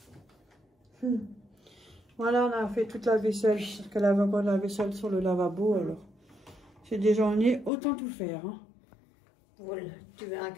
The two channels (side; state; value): right; drops out; at 7.7 s